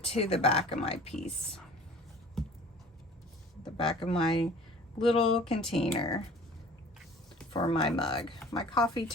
to the back of my piece, the back of my little container for my mug, my coffee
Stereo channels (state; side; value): normal; both; correlation 0.47